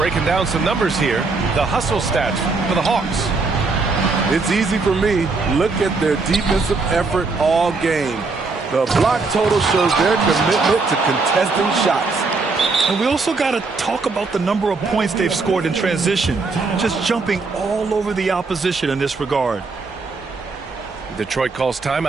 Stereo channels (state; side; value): quieter; left; 4.0 dB